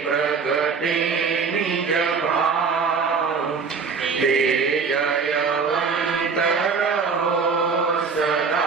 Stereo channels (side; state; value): left; quieter; 5.3 dB